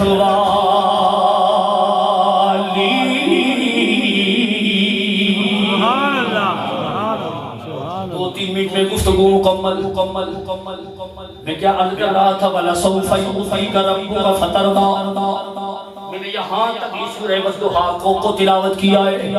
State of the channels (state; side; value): identical; both; correlation 1.00